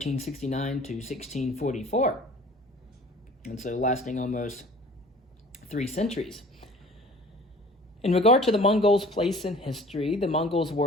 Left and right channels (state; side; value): normal; both; correlation 0.48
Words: to 1644, and so lasting almost 3 centuries. In regard to the Mongols' place in history, the Mongols